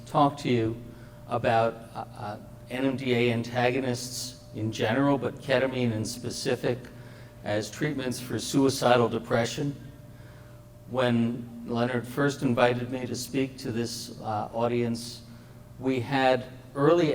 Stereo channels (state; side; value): identical; both; correlation 1.00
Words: talk to you about NMDA antagonists in general, but ketamine in specific as treatments for suicidal depression. When Leonard first invited me to speak to this audience, we had early